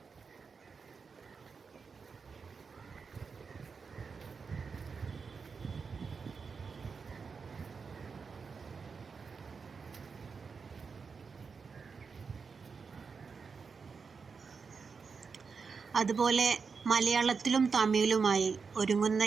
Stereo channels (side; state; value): left; quieter; 5.3 dB